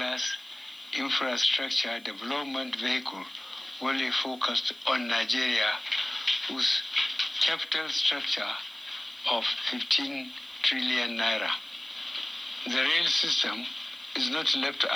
infrastructure development vehicle wholly focused on Nigeria, whose capital structure of 15 trillion naira. The rail system is not left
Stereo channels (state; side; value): noise; right; hiss, 26 dB below the sound